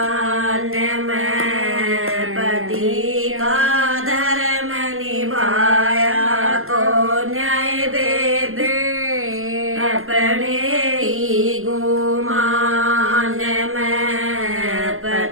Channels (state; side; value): late; left; 0.61 ms